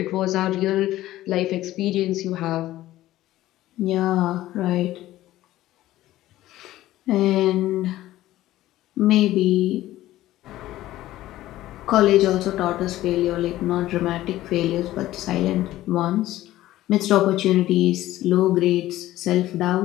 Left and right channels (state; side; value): quieter; right; 15.2 dB